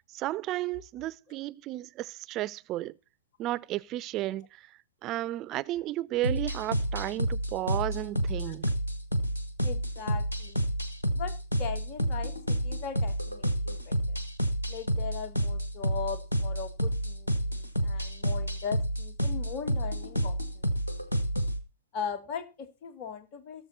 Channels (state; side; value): inverted; both; correlation -0.61